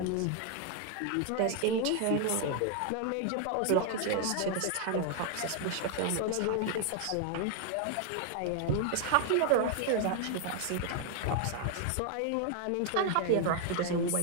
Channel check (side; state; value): both; different; correlation 0.00